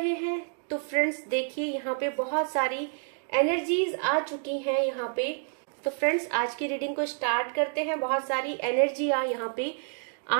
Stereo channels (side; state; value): left; silent; 59 dB below the other